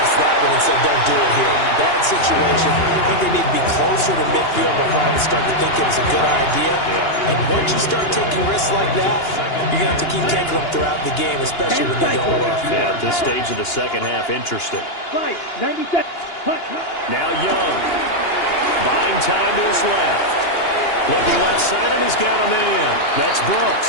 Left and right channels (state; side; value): late; right; 2.9 ms